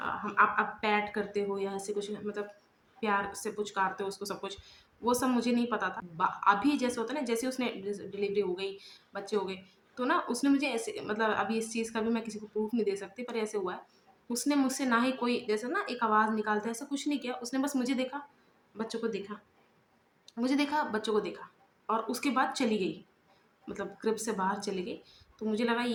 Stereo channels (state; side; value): identical; both; correlation 1.00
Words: आप पैट करते हो या ऐसे कुछ मतलब प्यार से पुचकारते हो उसको सब कुछ, वो सब मुझे नहीं पता था। अभी जैसे होता है ना, जैसे उसने डिलीवरी हो गई, बच्चे हो गए, तो ना उसने मुझे ऐसे मतलब अभी इस चीज़ का भी मैं किसी को प्रूफ नहीं दे सकती, पर ऐसे हुआ है, उसने मुझसे ना ही कोई जैसे ना एक आवाज़ निकालता है ऐसा कुछ नहीं किया, उसने बस मुझे देखा, बच्चों को देखा, मुझे देखा, बच्चों को देखा, और उसके बाद चली गई, मतलब क्रिब से बाहर चली गई। तो मुझे लगा